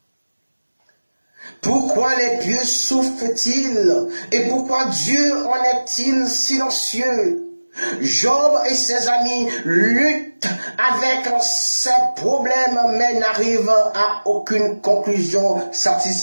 Pourquoi les pieux souffrent-ils et pourquoi Dieu en est-il silencieux? Job et ses amis luttent avec ses problèmes mais n'arrivent à aucune conclusion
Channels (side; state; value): both; inverted; correlation -1.00